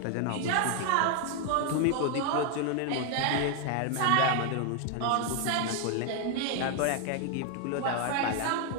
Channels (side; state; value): both; different; correlation 0.01